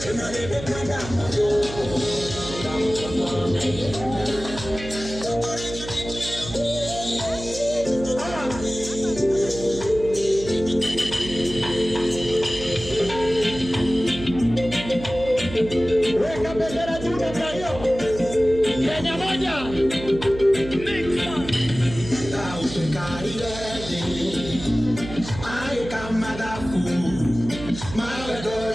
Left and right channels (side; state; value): right; noise; hum, 11 dB below the sound